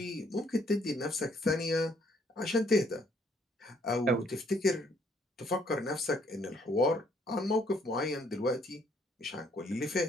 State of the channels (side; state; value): both; normal; correlation 0.66